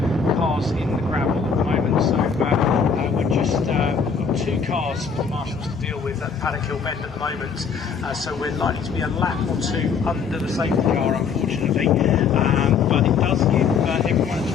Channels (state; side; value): quieter; right; 5.9 dB